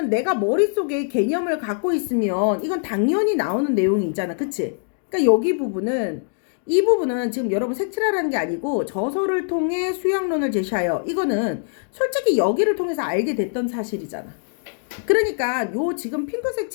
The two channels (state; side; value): silent; right; digital silence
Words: 내가 머릿속에 개념을 갖고 있으면 이건 당연히 나오는 내용이잖아. 그치? 그러니까 이 부분은 지금 여러분 색칠하라는 게 아니고 저서를 통해 수학론을 제시하여 이거는 솔직히 여기를 통해서 알게 됐던 사실이잖아. 그러니까 요 지금 핑크색